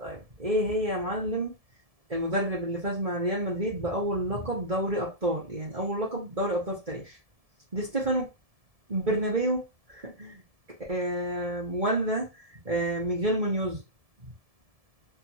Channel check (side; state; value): left; late; 1.7 ms